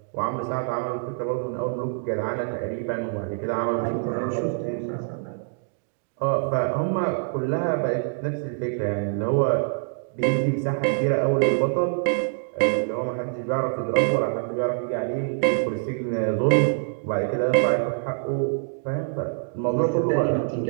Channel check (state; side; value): silent; left; digital silence